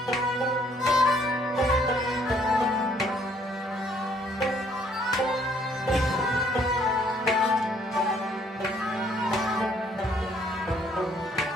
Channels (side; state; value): both; normal; correlation 0.64